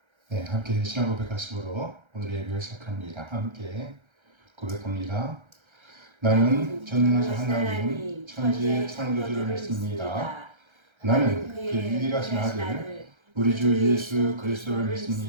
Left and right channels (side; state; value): left; late; 1.3 ms